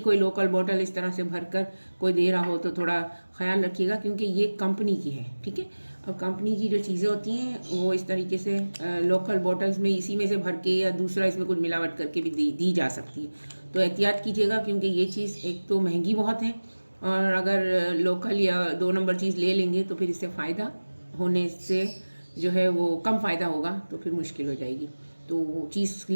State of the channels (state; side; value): inverted; both; correlation -1.00